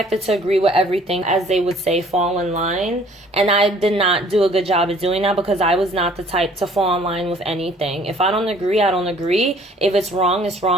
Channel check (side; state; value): both; normal; correlation 0.56